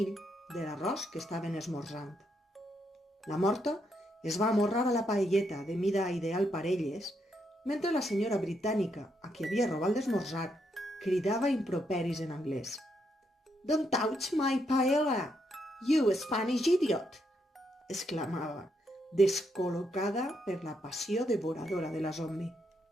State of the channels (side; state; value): both; normal; correlation 0.78